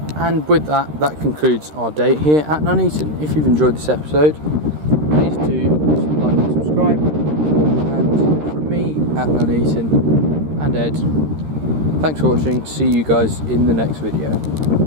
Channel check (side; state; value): left; late; 13 ms